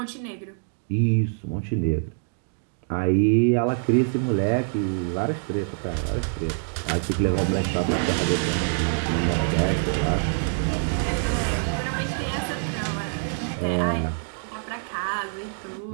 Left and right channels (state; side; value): silent; left; digital silence